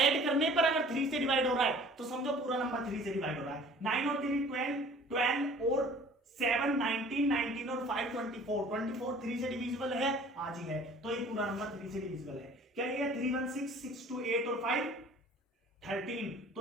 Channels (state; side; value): normal; both; correlation 0.50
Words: करने पर अगर 3 से डिवाइड हो रहा है तो समझो पूरा नंबर 3 से डिवाइड हो रहा है। 9 और 3 12 और 7 19 19 और 5 24 3 से डिविजिबल है, आज ही है, तो ये पूरा नंबर 3 से डिविजिबल है। क्या ये 316 628 और 5 13,